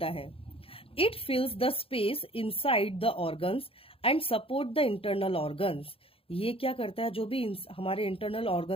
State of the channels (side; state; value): right; late; 0.27 ms